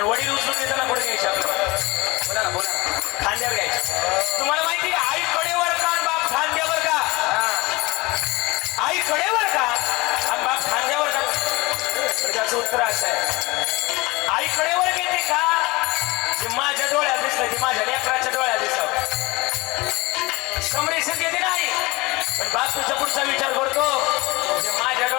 वडील उचलून देताना पुढे घ्यायचे आपलं. बोला ना बोला ना, खांद्यावर घ्यायचं. तुम्हाला माहिती का आई कडेवर का आणि बाप खांद्यावर का? आई कडेवर का आणि बाप खांद्यावर का? तर त्याचं उत्तर असं आहे, आई कडेवर घेते का जे माझ्या डोळ्यात दिसलं, ते माझ्या लेकराच्या डोळ्यात दिसलं. संप्रेषण घेते नाही, पण बाप तुझ्या पुढचा विचार करतो जे माझ्या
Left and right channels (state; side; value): quieter; right; 22.8 dB